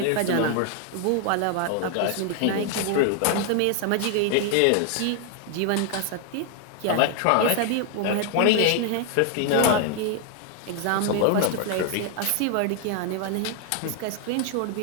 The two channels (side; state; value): both; different; correlation 0.00